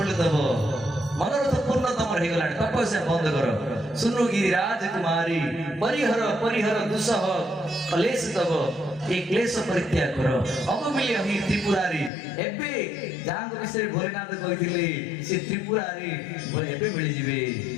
दव मनोरथ पूर्ण तमर हेगला तपस्या बंद करो सुनो गिरिराज कुमारी परिहर परिहर दुसह कलेश तब एक क्लेश परित्याग करो अब मिले ही त्रिपुरारी एबे जांग विषय भोलेनाथ कहिथिले से त्रिपुरारी एबे मिली जिवे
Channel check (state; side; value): drops out; right; at 12.1 s